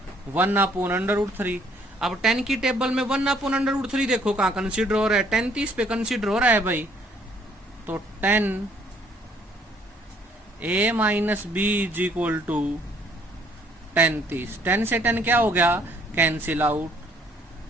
1/√3। अब 10 की टेबल में 1/√3 देखो कहाँ कंसीडर हो रहा है, 10 30 पे कंसीडर हो रहा है भाई। तो 10a - b = 10 30, 10 से 10 क्या हो गया, कैंसिल आउट।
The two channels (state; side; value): normal; both; correlation 0.63